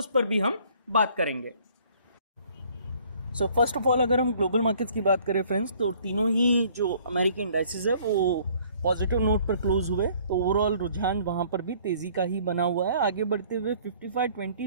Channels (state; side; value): inverted; both; correlation -0.58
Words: पर भी हम बात करेंगे। फर्स्ट ऑफ ऑल अगर हम ग्लोबल मार्केट्स की बात करें फ्रेंड्स, तो तीनों ही जो अमेरिकन इंडाइसेस है वो पॉजिटिव नोट पर क्लोज हुए। तो ओवरऑल रुझान वहाँ पर भी तेज़ी का ही बना हुआ है। आगे बढ़ते हुए